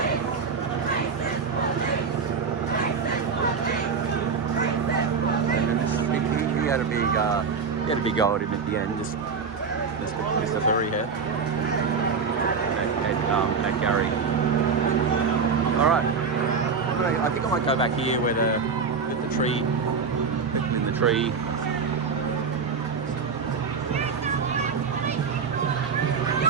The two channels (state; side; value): quieter; left; 5.4 dB